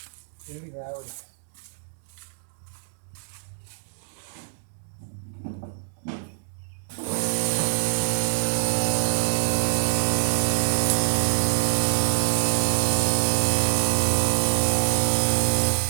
It's going to be loud.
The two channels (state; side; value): silent; left; 62 dB below the other